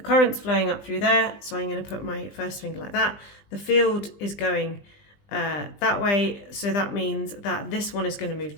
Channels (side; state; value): right; late; 20 ms